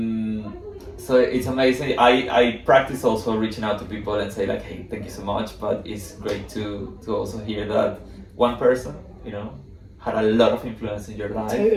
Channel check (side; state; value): both; identical; correlation 1.00